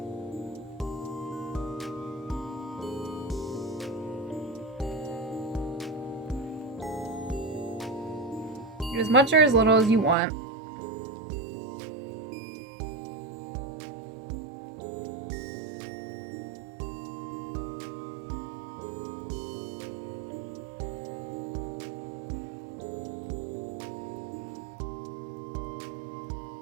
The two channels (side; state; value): left; drops out; at 10.2 s